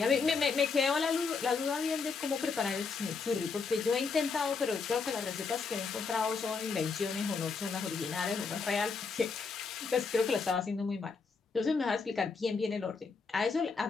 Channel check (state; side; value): quieter; right; 4.9 dB